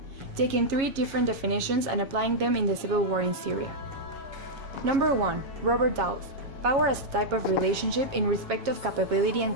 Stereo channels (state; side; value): late; left; 7.3 ms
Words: taking 3 different definitions and applying them in the civil war in Syria. Number 1. Robert Dawes. Power as a type of relationship in respect of capability and